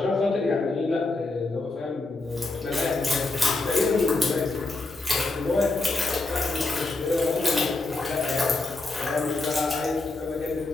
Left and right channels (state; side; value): quieter; right; 3.2 dB